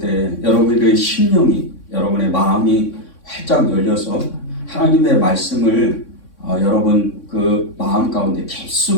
여러분의 심령이, 여러분의 마음이 활짝 열려서 하나님의 말씀을 여러분 그 마음 가운데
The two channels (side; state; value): right; late; 3.6 ms